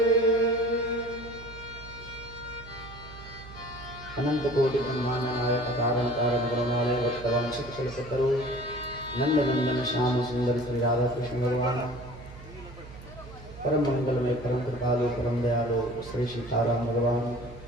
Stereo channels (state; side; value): noise; right; hum, 16 dB below the sound